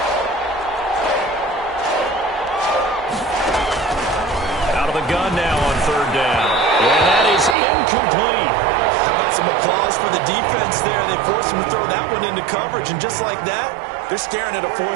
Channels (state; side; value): drops out; left; at 7.6 s